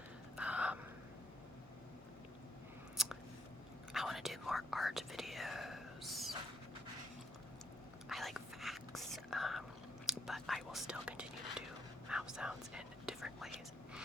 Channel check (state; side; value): normal; both; correlation 0.72